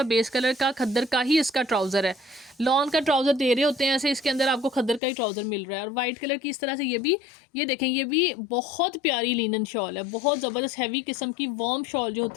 बेस कलर का खद्दर का ही इसका ट्राउज़र है, लॉन का ट्राउज़र दे रहे होते हैं ऐसे, इसके अंदर आपको खद्दर का ही ट्राउज़र मिल रहा है। और वाइट कलर की इस तरह से ये देखें, ये भी बहुत प्यारी लिनन शॉल है, बहुत ज़बरदस्त हैवी किस्म की वार्म शॉल जो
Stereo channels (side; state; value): right; drops out; at 5.0 s